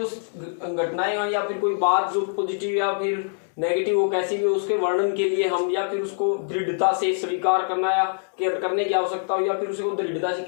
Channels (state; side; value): silent; right; digital silence